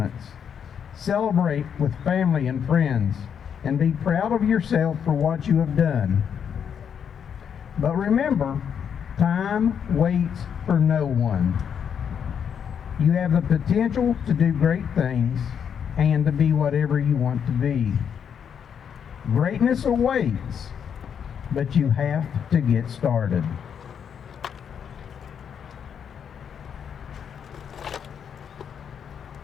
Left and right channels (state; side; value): quieter; right; 7.8 dB